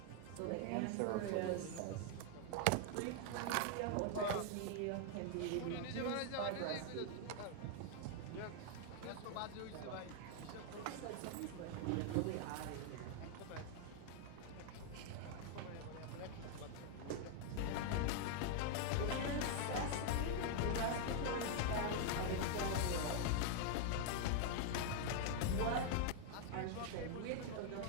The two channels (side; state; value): both; different; correlation 0.00